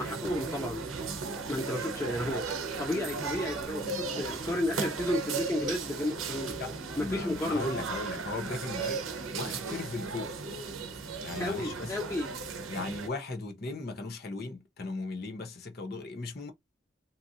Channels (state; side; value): normal; both; correlation 0.54